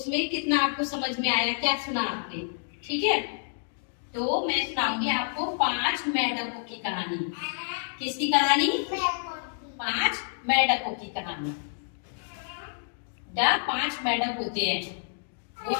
कितना आपको समझ में आया, क्या सुना आपने। ठीक है? तो मैं सुनाऊंगी आपको 5 मेंढकों की कहानी। किसकी कहानी? 5 मेंढकों की कहानी। 5 मेंढक होते हैं, वो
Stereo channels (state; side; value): silent; right; digital silence